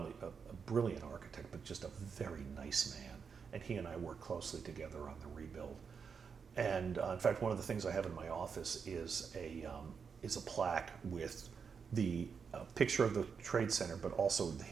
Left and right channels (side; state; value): left; quieter; 6.1 dB